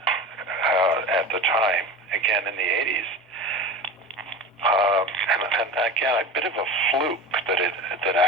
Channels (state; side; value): normal; both; correlation 0.30